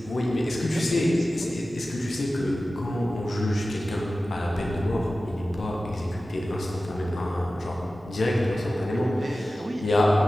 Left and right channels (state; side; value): normal; both; correlation 0.95